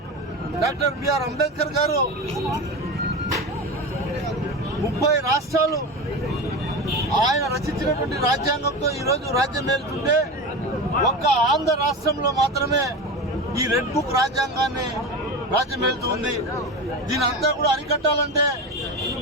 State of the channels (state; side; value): normal; both; correlation 0.25